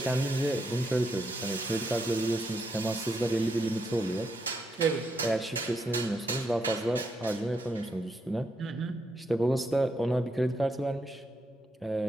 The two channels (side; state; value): both; normal; correlation 0.79